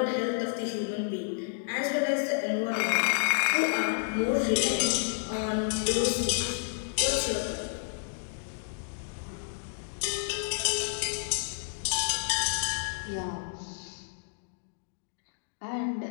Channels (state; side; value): silent; right; digital silence